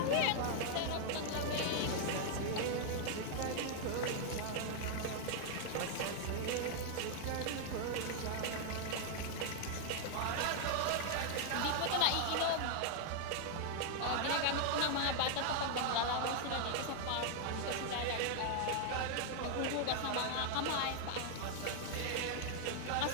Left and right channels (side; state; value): both; different; correlation 0.00